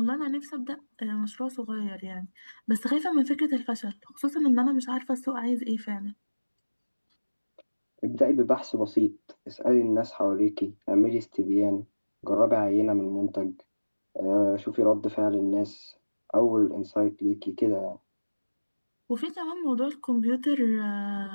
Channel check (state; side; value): inverted; both; correlation -1.00